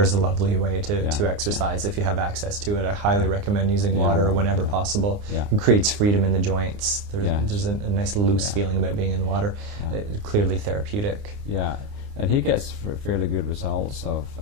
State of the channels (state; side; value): late; left; 29 ms